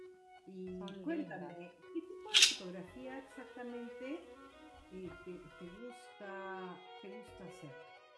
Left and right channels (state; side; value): identical; both; correlation 1.00